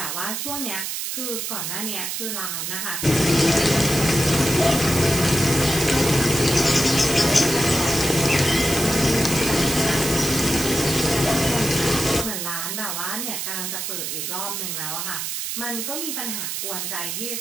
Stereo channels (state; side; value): noise; right; hiss, 3 dB below the sound